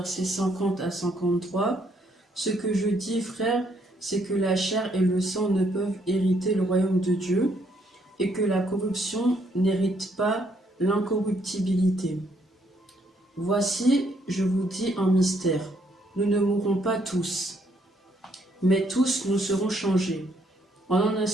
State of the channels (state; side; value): normal; both; correlation 0.70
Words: 50 à 53. Ce que je dis, frères, c'est que la chair et le sang ne peuvent hériter le royaume de Dieu, et que la corruption n'hérite pas l'incorruptibilité. Voici, je vous dis un mystère. Nous ne mourrons pas tous, mais tous nous serons changés. En un